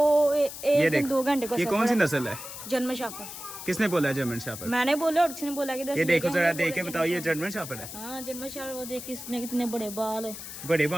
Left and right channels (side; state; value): left; noise; hiss, 11 dB below the sound